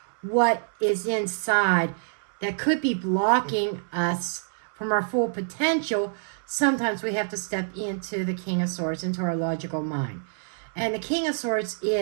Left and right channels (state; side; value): silent; left; 61 dB below the other